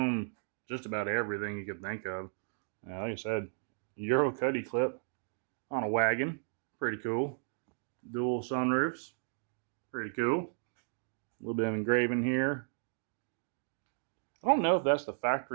just about everything you could think of. Like I said, Euro cuddy clip on a wagon, pretty cool. Dual sunroofs, pretty cool. A little bit of engraving here. I don't know if that's the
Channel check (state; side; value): silent; left; digital silence